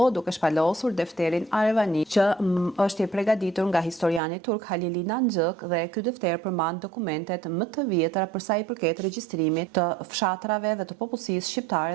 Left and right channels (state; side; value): drops out; left; at 4.2 s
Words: duke shpalosur defterin Arvani që është i përgatitur nga historiani turk Halili Nanxhëk dhe ky defter përmban dokumentet më të vjetra për sa i përket regjistrimit të fshatrave dhe të popullsisë shqiptare